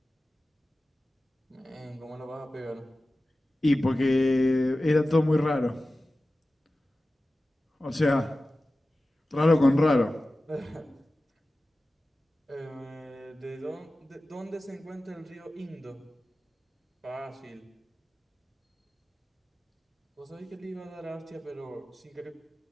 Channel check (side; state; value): both; normal; correlation 0.95